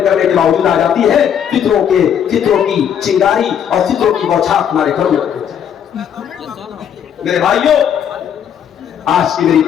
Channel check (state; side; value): quieter; right; 8.7 dB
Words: کرنے کے باوجود آ جاتی ہے. فطروں کی چنگاری اور فطروں کی بوچھار تمہارے گھروں میں. میرے بھائیوں, آج کی میری